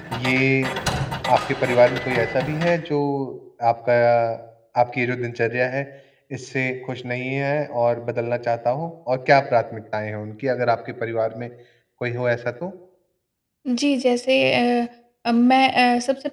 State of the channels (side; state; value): both; identical; correlation 1.00